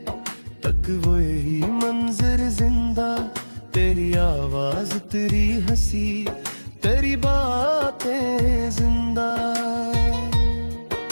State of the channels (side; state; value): both; inverted; correlation -1.00